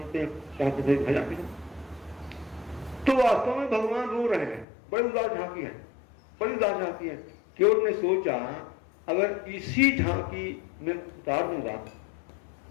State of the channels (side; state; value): right; drops out; at 4.7 s